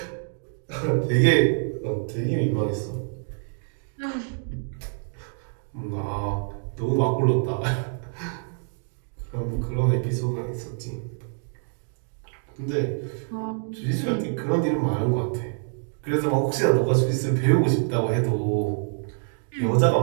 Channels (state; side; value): silent; left; 61 dB below the other